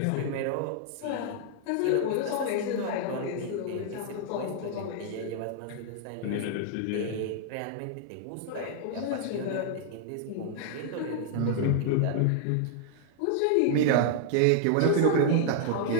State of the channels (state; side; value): different; both; correlation -0.01